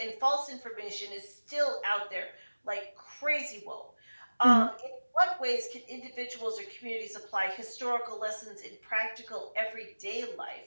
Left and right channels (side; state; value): both; inverted; correlation -1.00